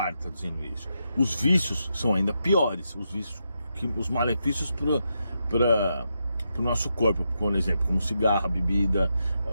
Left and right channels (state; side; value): inverted; both; correlation -0.84